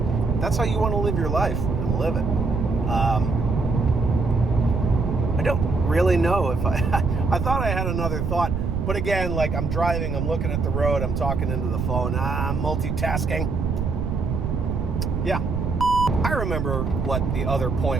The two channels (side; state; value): right; noise; rumble, 1 dB below the sound